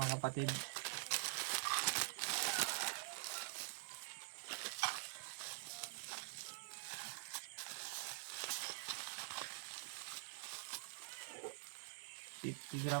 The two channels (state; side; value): silent; left; digital silence